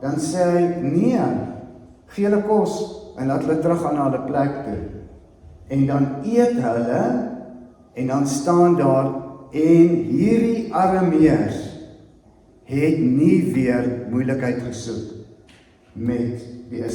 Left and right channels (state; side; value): identical; both; correlation 1.00